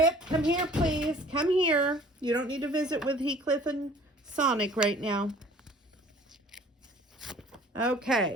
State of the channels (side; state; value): both; normal; correlation 0.51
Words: come here, please. Come here. You don't need to visit with Heathcliff and Sonic right now.